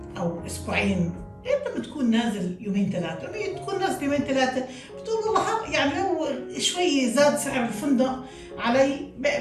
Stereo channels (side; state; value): both; identical; correlation 1.00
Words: او اسبوعين، انت بتكون نازل يومين ثلاثه، لما تكون نازل يومين ثلاثه بتقول والله يعني لو شوي زاد سعر الفندق علي